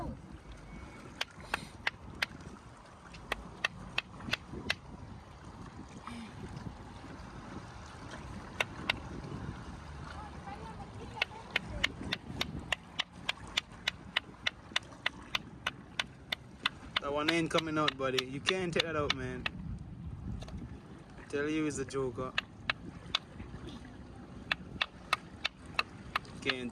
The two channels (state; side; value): identical; both; correlation 1.00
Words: That one ain't coming out, buddy. You can't take that out, man. I tell you, it's a Joker. Can't